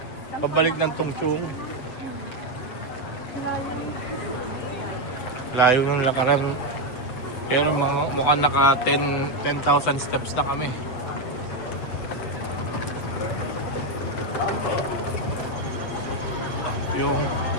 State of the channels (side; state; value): right; late; 7.9 ms